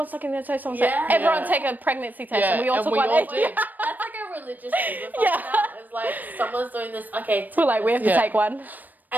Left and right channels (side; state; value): left; late; 0.086 ms